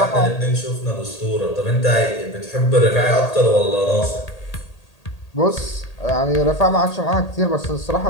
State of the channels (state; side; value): late; right; 1.8 ms